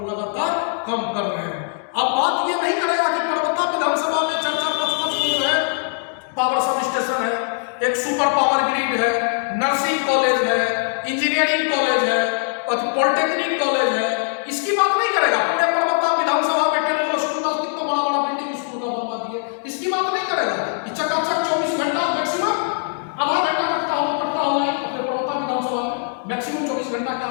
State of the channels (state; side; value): silent; right; 65 dB below the other